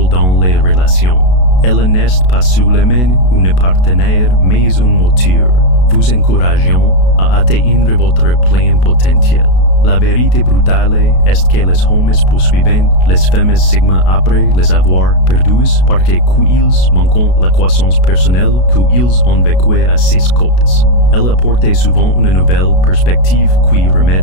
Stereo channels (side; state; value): right; late; 32 ms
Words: dans les relations. Elle n'est pas seulement une partenaire, mais un moteur, vous encourageant à atteindre votre plein potentiel. La vérité brutale est que les hommes poursuivent les femmes Sigma après les avoir perdues parce qu'ils manquent la croissance personnelle qu'ils ont vécue à ses côtés. Elle apporte souvent une nouvelle perspective qui remet